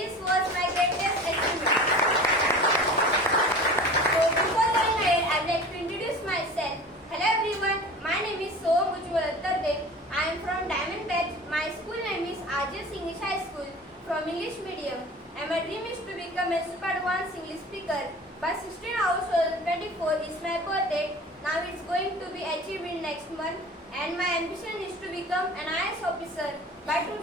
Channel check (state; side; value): normal; both; correlation 0.39